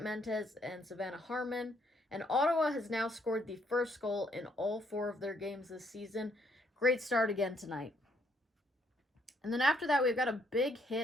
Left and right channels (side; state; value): both; normal; correlation 0.70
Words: Mentes and Savannah Harmon, and Ottawa has now scored the first goal in all 4 of their games this season. Great start again tonight. And then after that, we've got a big